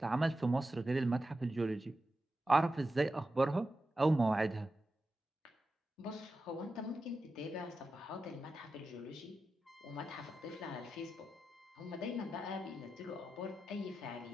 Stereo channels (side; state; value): both; normal; correlation 0.91